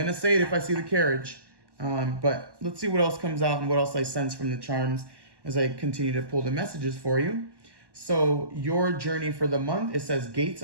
to say it if I see the carriage. But let's see what else comes out and what else I sense from the charms as I continue to pull the messages for you. So your journey for the month, it says gates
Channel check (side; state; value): left; late; 1.1 ms